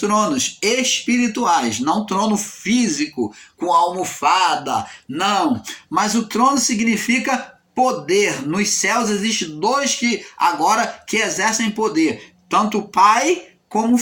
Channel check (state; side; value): identical; both; correlation 1.00